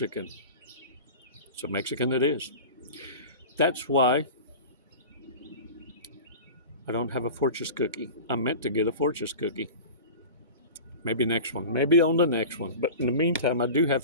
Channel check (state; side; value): inverted; both; correlation -0.33